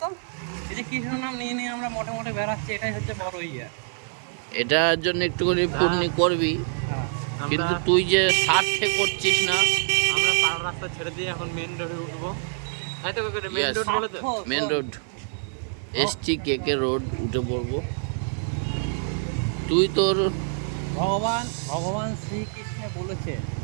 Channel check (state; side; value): silent; left; 56 dB below the other